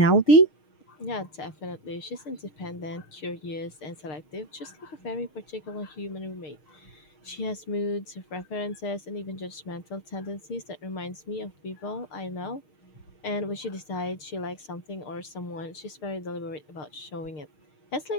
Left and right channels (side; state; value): right; late; 6.5 ms